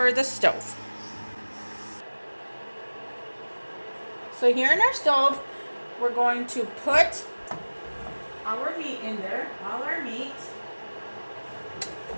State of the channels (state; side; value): inverted; both; correlation -1.00